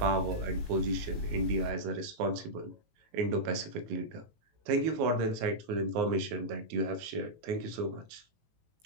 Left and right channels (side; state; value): left; late; 18 ms